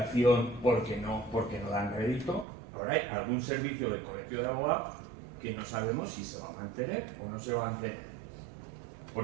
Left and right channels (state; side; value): drops out; left; at 2.5 s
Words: porque no dan rédito. Ahora hay algún servicio del Colegio de Abogados que no sabemos si se va a mantener o no se va a mantener.